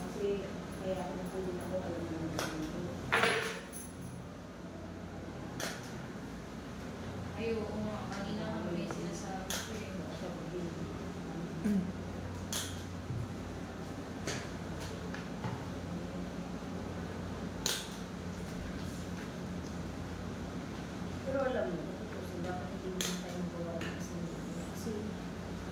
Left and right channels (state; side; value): identical; both; correlation 1.00